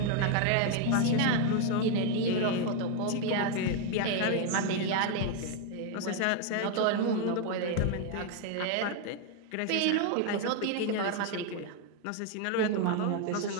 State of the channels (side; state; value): both; different; correlation 0.01